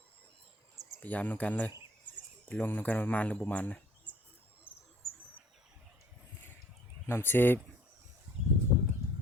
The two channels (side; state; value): both; normal; correlation 0.55